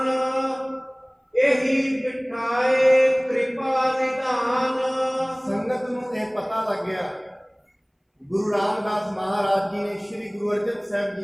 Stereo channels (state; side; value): identical; both; correlation 1.00